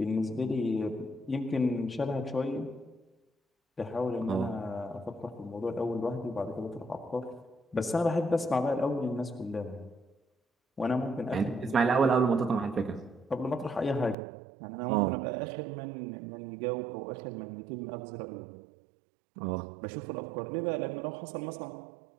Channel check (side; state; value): left; drops out; at 14.2 s